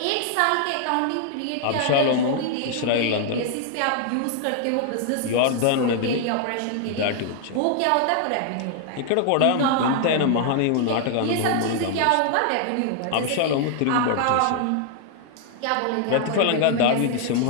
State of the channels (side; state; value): both; different; correlation 0.00